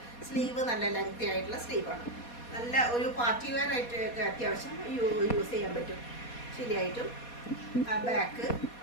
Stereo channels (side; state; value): right; late; 4.2 ms